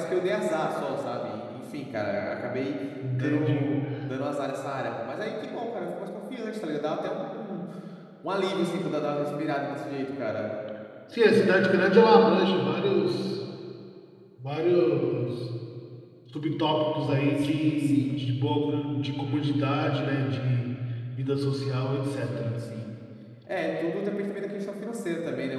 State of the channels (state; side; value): identical; both; correlation 1.00